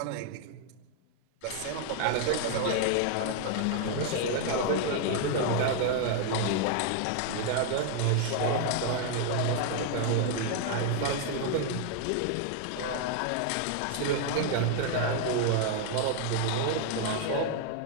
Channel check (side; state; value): both; different; correlation 0.00